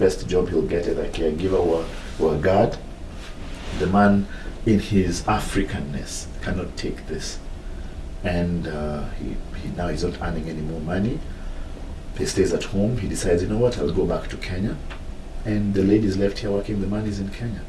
job he'll get as a caregiver or a guard? The man in his Africanness, cannot take this. And he's not earning any more money. He stays at home. He decides, you know what, I'll go back to Kenya. And the ladies left here working, the money's in Kenya.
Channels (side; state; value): both; identical; correlation 1.00